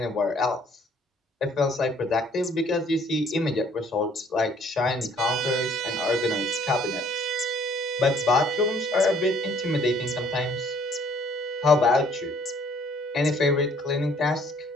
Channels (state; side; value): normal; both; correlation 0.60